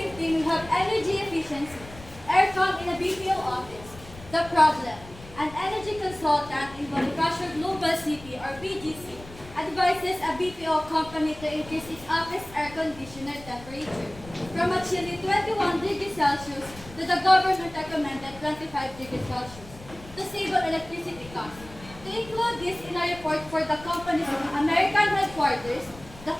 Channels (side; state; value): left; noise; rumble, 18 dB below the sound